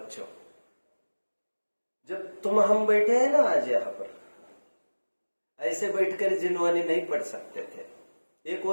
जब हम बैठे हैं ना आज यहां पर, ऐसे बैठकर जिनवानी नहीं पढ़ सकते थे। एक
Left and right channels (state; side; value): inverted; both; correlation -1.00